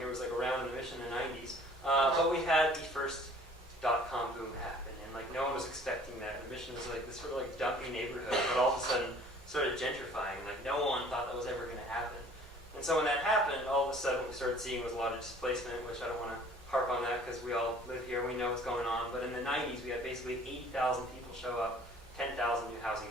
was like around in the Mission in the 90s, but we had the first .com boom happen, and like no one was expecting that. The Mission was like this sort of like dumpy neighborhood, but all of a sudden started gentrifying. Like no one thought that was ever going to happen. And so when that happened, all of a sudden what we started seeing was a lot of displacement, which I don't want to harp on that because we all live here, we know what's going on. But in the 90s, we had basically 80,000 people show up, 10,000 new housing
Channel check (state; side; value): normal; both; correlation 0.52